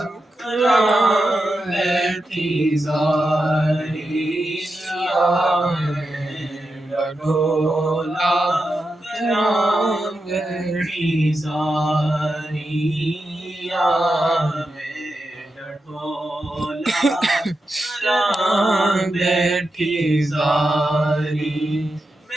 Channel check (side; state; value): both; normal; correlation 0.88